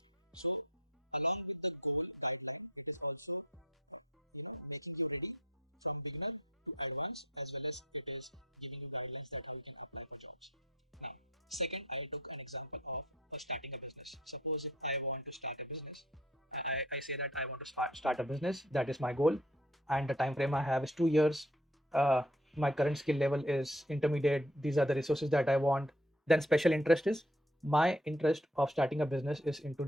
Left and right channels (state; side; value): normal; both; correlation 0.56